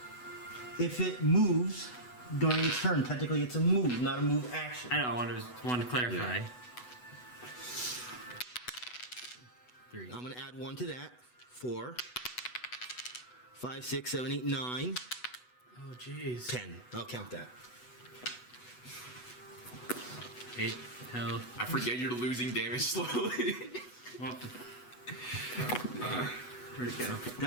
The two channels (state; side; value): late; right; 8.1 ms